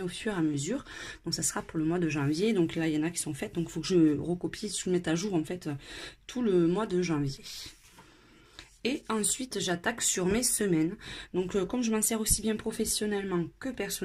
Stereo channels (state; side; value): identical; both; correlation 1.00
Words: au fur et à mesure. Donc ça sera pour le mois de janvier. Donc là, il y en a qui sont faites. Donc il faut que je recopie, je mette à jour en fait tout le mois de janvier. Et ensuite, j'attaque sur mes semaines. Donc, comme je m'en sers aussi bien professionnellement que